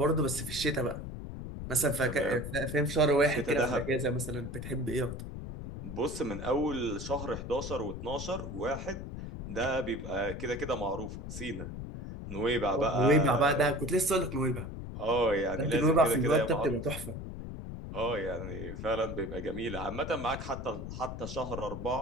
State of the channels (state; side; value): noise; left; rumble, 8 dB below the sound